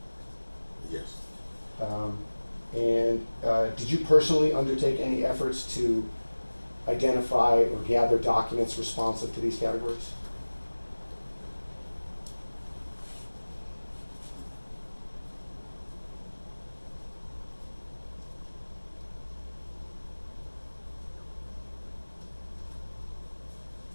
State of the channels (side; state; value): both; inverted; correlation -1.00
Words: Yes. Did you personally undertake any efforts to identify or gather documents responsive to these categories?